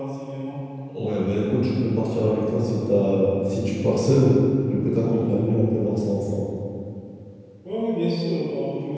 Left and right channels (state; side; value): identical; both; correlation 1.00